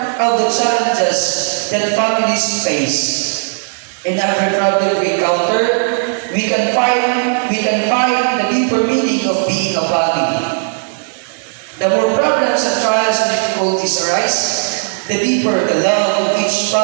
of the challenges that families face. In every problem we encounter, we can find the deeper meaning of being a family. The more problems and trials and difficulties arise, the deeper the love of each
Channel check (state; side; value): silent; left; digital silence